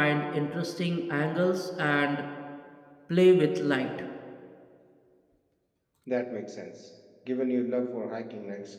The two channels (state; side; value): identical; both; correlation 1.00